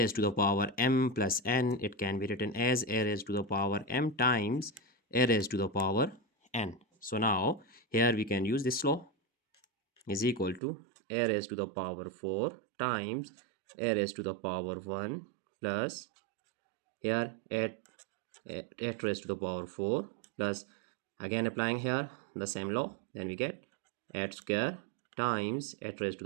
to the power m plus n, it can be written as a raised to the power m times a raised to the power n. So now here we can use this law, is equal to a raised to the power 4 times a raised to the power 1 plus here 8 raised to the power 4 plus, again applying here the same law, then we get 8 square times 8 raised to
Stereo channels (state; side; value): drops out; left; at 10.6 s